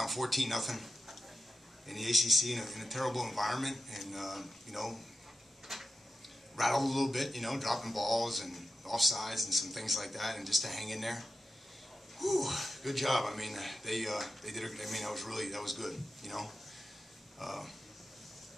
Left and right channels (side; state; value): both; normal; correlation 0.91